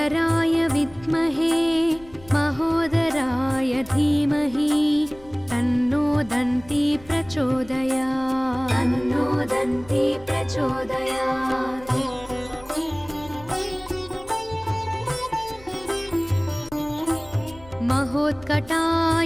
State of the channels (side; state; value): left; noise; rumble, 22 dB below the sound